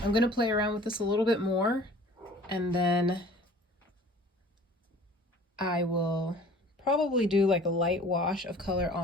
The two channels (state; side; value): normal; both; correlation 0.48